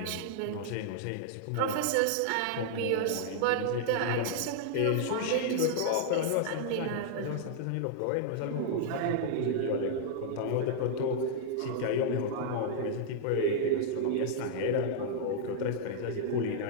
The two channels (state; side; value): different; both; correlation -0.01